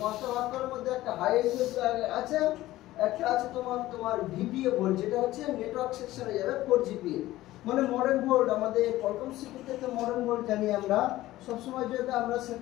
5টা বাক কয়েলের মধ্যে একটা হাই এলইউ আছে, একটা আছে তোমার ভিপিএ ভোল্ট, যেটা হচ্ছে নেটওয়ার্ক সেকশনে যাবে 4GPA, মানে মডার্ন ভোল্ট। আমাদের কলকম সিপিইউ তে মডার্ন ভোল্ট জানি আমরা, সব সময় যেটা আমরা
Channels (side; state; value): right; quieter; 16.1 dB